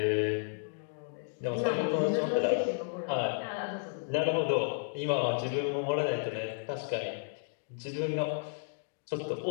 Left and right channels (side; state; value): right; silent; digital silence